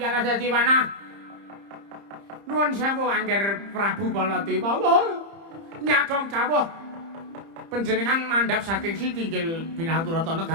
alas dadi panah nuwun sewu Angger Prabu Baladewa nyadong dawuh panjenengan mandhap saking Sitinggil Binaturata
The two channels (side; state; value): left; late; 30 ms